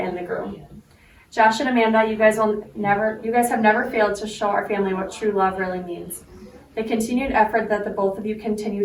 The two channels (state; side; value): identical; both; correlation 1.00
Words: and the groom. Josh and Amanda, you guys have never failed to show our family what true love really means. The continued effort that the both of you